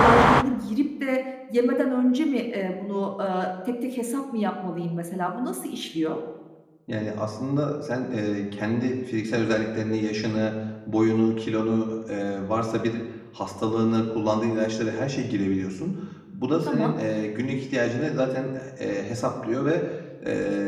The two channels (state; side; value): identical; both; correlation 1.00